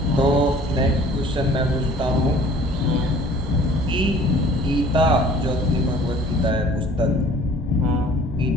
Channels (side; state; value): both; normal; correlation 0.51